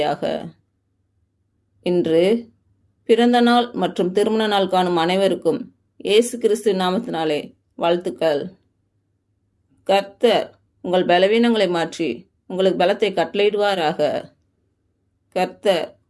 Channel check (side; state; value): both; identical; correlation 1.00